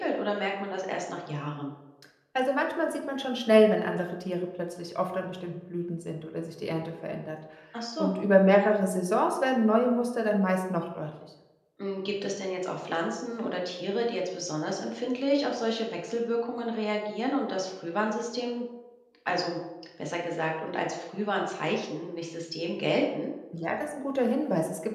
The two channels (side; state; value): both; identical; correlation 1.00